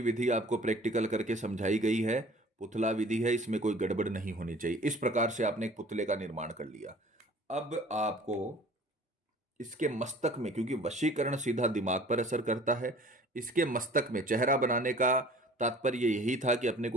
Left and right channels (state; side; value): normal; both; correlation 0.48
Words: विधि आपको प्रैक्टिकल करके समझाई गई है। पुतला विधि है, इसमें कोई गड़बड़ नहीं होनी चाहिए। इस प्रकार से आपने एक पुतले का निर्माण कर लिया। अब आपको इसके मस्तक में, क्योंकि वशीकरण सीधा दिमाग पर असर करता है, इसके मस्तक में चेहरा बनाने का तात्पर्य यही था कि अपने